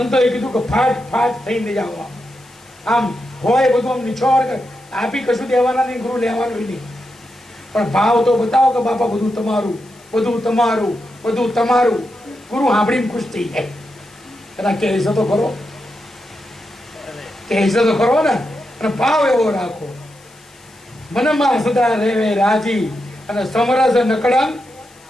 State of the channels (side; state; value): left; noise; hiss, 27 dB below the sound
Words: કીધું કે ફાટ ફાટ થઈને જવા આમ હોય બધું આમ નિછોડ આપી કશું દેવાના નહીં ગુરુ લેવાનું નહીં પણ ભાવ તો બતાવો કે બાપા બધું તમારું બધું તમારું બધું તમારું. ગુરુ સાંભળીને ખુશ થઈ જાય એના કહેશે તો ખરો કહેશે તો ખરો ને અને ભાવ એવો રાખો મનમાં સદા રહેવે રાજી અને સમરસ નકળંગ